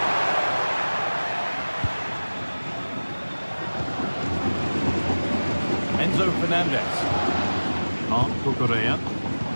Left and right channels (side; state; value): both; inverted; correlation -1.00